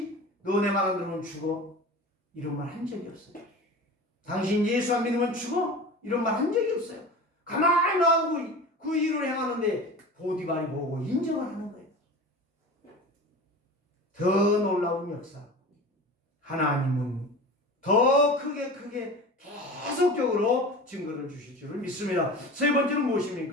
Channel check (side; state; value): both; normal; correlation 0.34